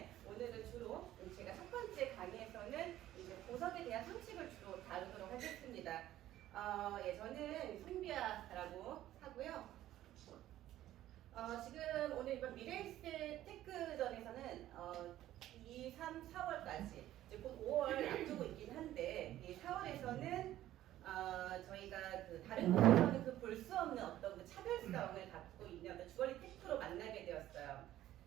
오늘은 주로 제가 첫 번째 강의에서는 이제 보석에 대한 상식을 주로 다루도록 하겠습니다. 예, 저는 송비아라고 하고요. 지금 오늘 이번 미래에셋 테크전에서는 2, 3, 4월까지 이제 곧 5월 앞두고 있긴 한데 이 4월에서는 저희가 그 다른 곳에서는 그 볼 수 없는 어떤 그 차별성을 갖고 있는 어떤 주얼리 테크로 만나게 되었어요.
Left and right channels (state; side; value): quieter; left; 13.6 dB